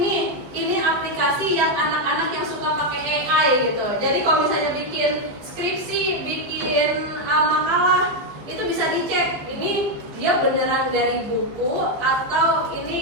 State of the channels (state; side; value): late; left; 15 ms